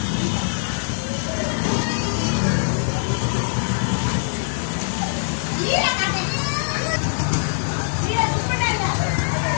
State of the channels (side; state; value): right; silent; 63 dB below the other